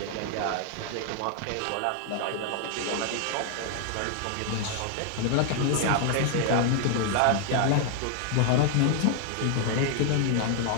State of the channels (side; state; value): both; different; correlation 0.00